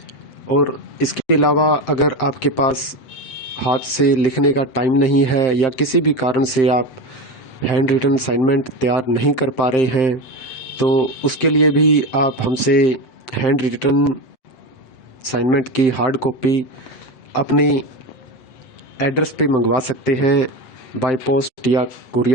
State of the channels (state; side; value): late; right; 7.6 ms